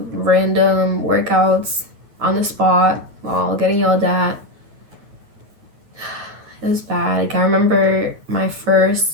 random workouts on the spot while getting yelled at. It was bad. Like I remember my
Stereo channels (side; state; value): left; late; 9.2 ms